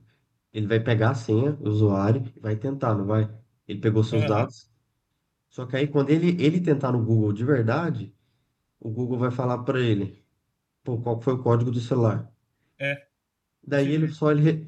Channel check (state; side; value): identical; both; correlation 1.00